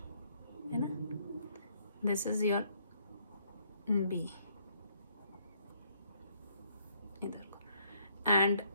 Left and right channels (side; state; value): both; inverted; correlation -0.68